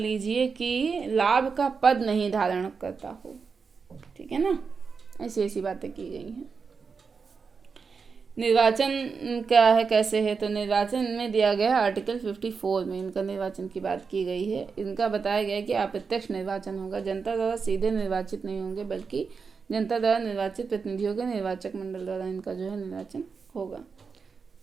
कि लाभ का पद नहीं धारण करता हो, ठीक है ना। ऐसी बातें की गई हैं। निर्वाचन क्या है, कैसे है, तो निर्वाचन में दिया गया आर्टिकल 54 में इनका निर्वाचन की बात की गई है। इनका बताया गया है कि अप्रत्यक्ष निर्वाचन होगा, जनता द्वारा सीधे निर्वाचित नहीं होंगे, बल्कि जनता द्वारा निर्वाचित प्रतिनिधियों के निर्वाचक मंडल द्वारा इनका जो है निर्वाचन होगा।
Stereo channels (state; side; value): quieter; left; 5.3 dB